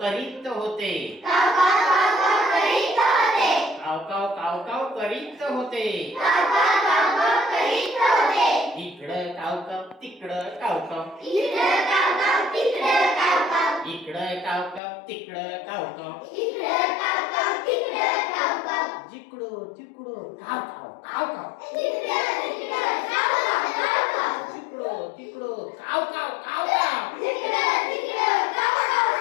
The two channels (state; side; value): drops out; right; at 14.8 s